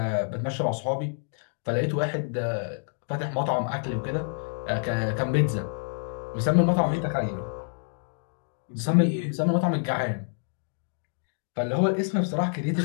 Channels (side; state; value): right; silent; digital silence